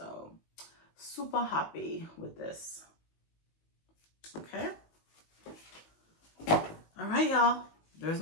super happy with this. Okay. All right, y'all. There's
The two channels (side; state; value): right; late; 19 ms